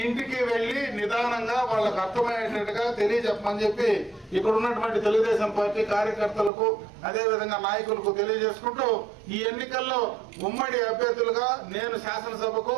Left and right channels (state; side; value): drops out; left; at 6.5 s